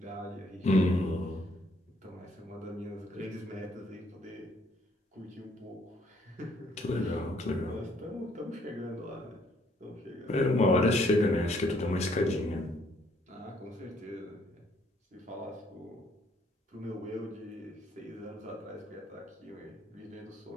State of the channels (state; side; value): normal; both; correlation 0.66